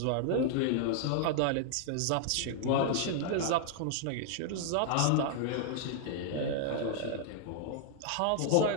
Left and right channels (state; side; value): different; both; correlation -0.01